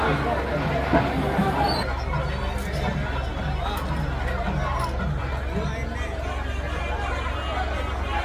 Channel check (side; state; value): both; identical; correlation 1.00